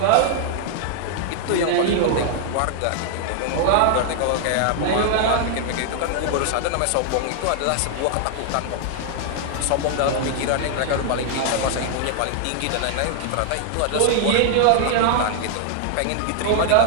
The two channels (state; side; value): different; both; correlation 0.00